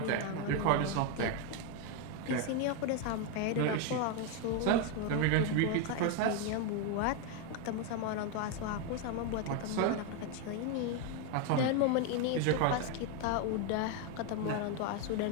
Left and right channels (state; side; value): different; both; correlation 0.01